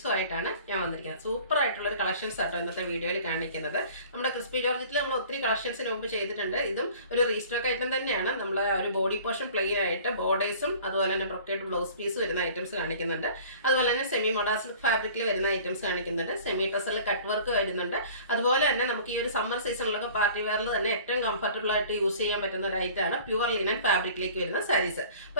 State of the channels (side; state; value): both; inverted; correlation -0.47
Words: ഞാൻ വന്നിരിക്കുന്നത്. സൂപ്പർ ആയിട്ടുള്ള ഒരു കളക്ഷൻസ് ആട്ടോ ഇന്നത്തെ വീഡിയോയിൽ കാണിക്കുന്നത്. നമ്മുടെ ക്രിസ്പി ജോർജറ്റിൽ നമ്മൾ ഒത്തിരി കളക്ഷൻസിന് മുമ്പ് ചെയ്തിട്ടുണ്ട്. ഇതും ഒരു റീസ്റ്റോക്ക് ഐറ്റം തന്നെയാണ്. നമ്മൾ ഒരു ബോഡി പോർഷൻ പ്ലെയിൻ ആയിട്ട് ബോർഡേഴ്സും അതുപോലെ തന്നെ ബ്രൊക്കേഡ് ബ്ലൗസ് പീസ് വരുന്ന ഐറ്റംസ് കാണിക്കുന്നുണ്ട്. അതുപോലെ തന്നെ സെമി മൊഡാസിൽ ഫാബ്രിക്കിൽ വരുന്ന ഐറ്റംസ് കാണിക്കുന്നുണ്ട്. സെമി ടസറിൽ കട്ട് വർക്ക് വരുന്നുണ്ട്. അതുപോലെ തന്നെ നമുക്ക് ഈ ഒരു സമ്മർ സീസണിലൊക്കെ പാർട്ടി വെയറിൽ തന്നെ ഏറ്റവും കംഫർട്ടബിൾ ആയിട്ട് യൂസ് ചെയ്യാൻ പറ്റുന്ന ഒരു ഐറ്റമാണ് പ്യുവർ ലിനൻ ഫാബ്രിക്കിലേക്ക് വരുന്ന സാരീസ്.